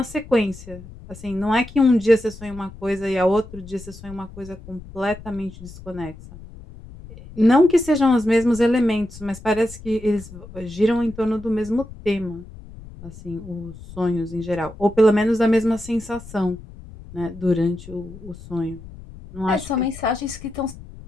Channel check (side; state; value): left; noise; rumble, 17 dB below the sound